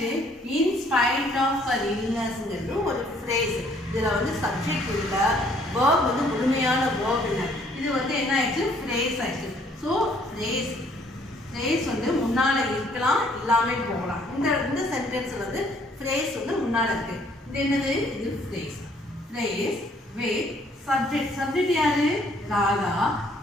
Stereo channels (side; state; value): both; normal; correlation 0.63